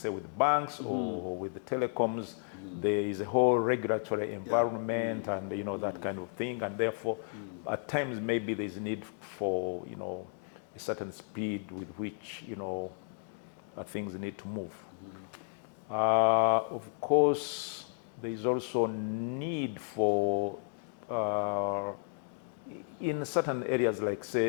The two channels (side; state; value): right; silent; 56 dB below the other